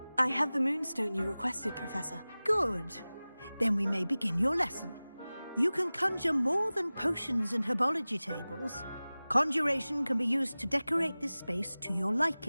I have the moonstone you requested, Professor. Good. Then we may begin your lesson. You can conjure more than potions and herbology tables. Conjuration can be used to decorate this space to your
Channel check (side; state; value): both; inverted; correlation -0.98